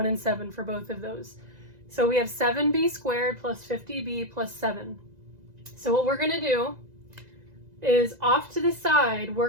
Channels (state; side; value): late; left; 2.0 ms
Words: and 7 for both of those. So we have 7b squared plus 50b plus 7. So what we're going to do is off to the side, we're